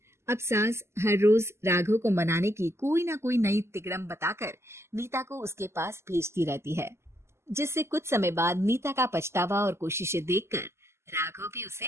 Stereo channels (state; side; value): late; left; 0.13 ms